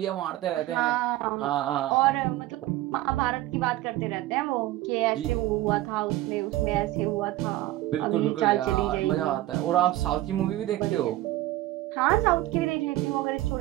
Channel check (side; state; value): left; quieter; 16.2 dB